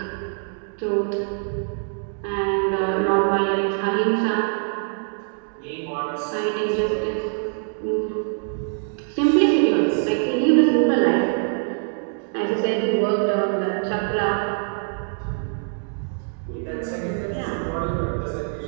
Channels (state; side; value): silent; left; 63 dB below the other